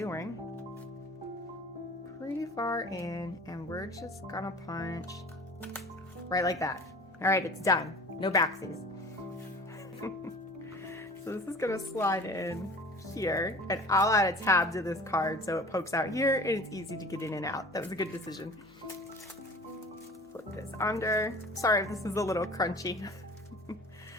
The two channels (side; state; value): both; normal; correlation 0.43